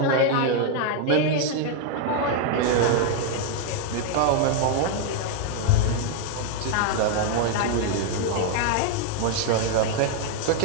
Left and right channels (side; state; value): both; different; correlation 0.00